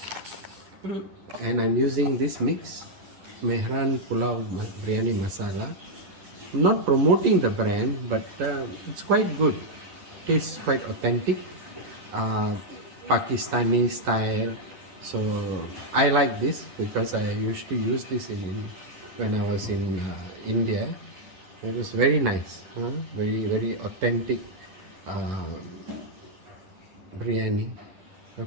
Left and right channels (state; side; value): late; left; 10 ms